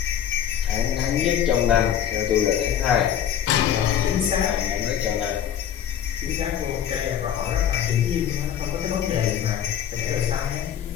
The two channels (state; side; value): quieter; right; 9.8 dB